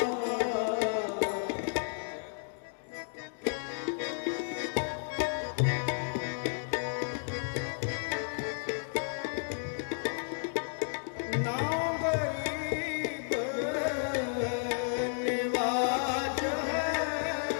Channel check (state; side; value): silent; right; digital silence